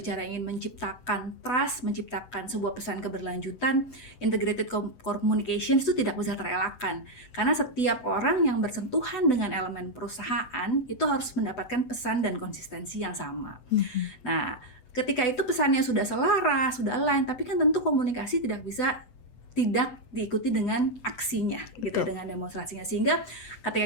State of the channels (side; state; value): right; late; 8.0 ms